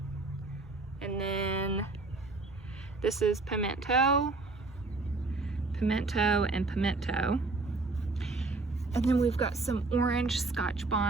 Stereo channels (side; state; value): left; quieter; 3.5 dB